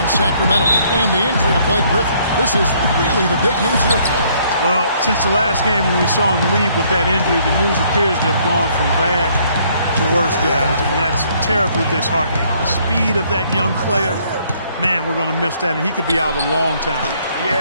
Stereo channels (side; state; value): both; inverted; correlation -0.65